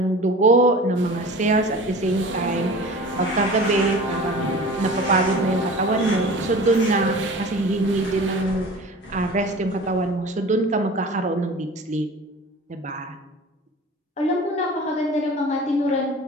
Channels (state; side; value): normal; both; correlation 0.39